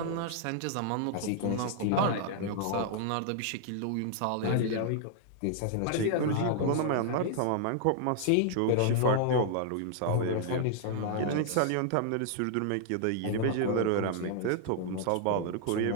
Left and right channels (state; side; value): different; both; correlation 0.00